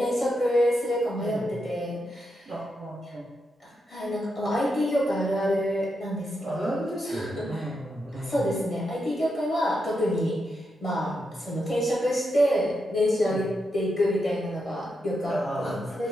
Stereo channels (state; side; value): normal; both; correlation 0.84